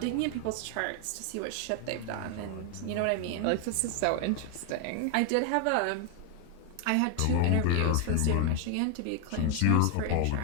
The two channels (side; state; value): both; different; correlation 0.00